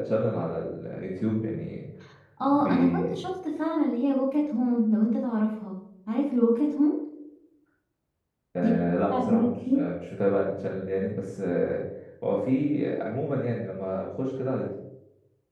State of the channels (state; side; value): identical; both; correlation 1.00